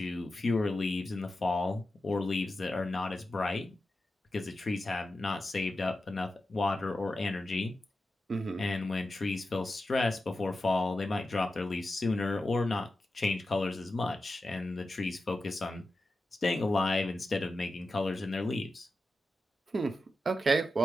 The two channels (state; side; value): normal; both; correlation 0.91